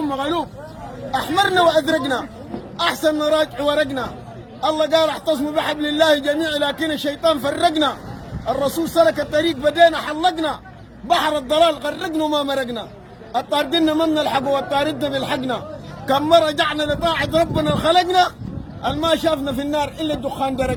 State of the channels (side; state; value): both; identical; correlation 1.00